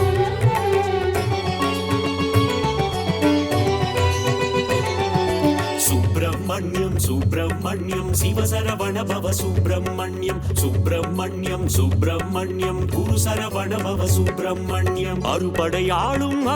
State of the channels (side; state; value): both; identical; correlation 1.00